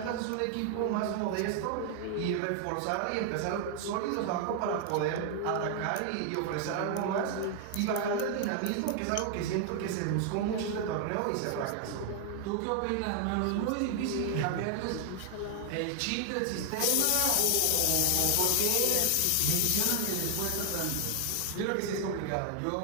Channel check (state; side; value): different; both; correlation 0.00